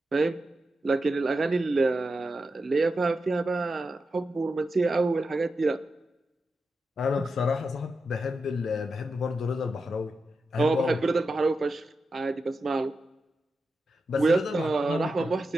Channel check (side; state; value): both; normal; correlation 0.89